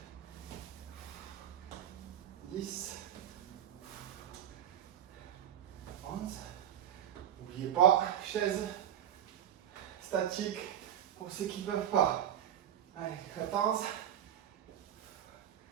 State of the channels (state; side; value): quieter; left; 10.3 dB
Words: 10, 11. N'oubliez pas, chaise statique pour ceux qui ne peuvent pas. Allez, 14,